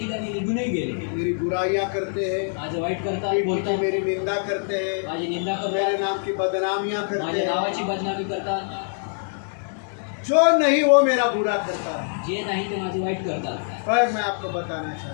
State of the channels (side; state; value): right; silent; digital silence